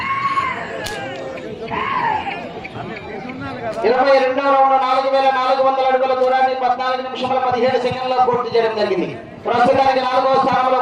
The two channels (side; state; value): both; identical; correlation 1.00